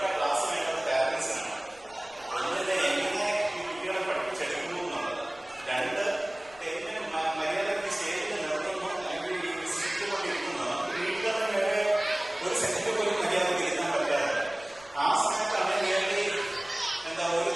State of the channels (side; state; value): left; noise; rumble, 26 dB below the sound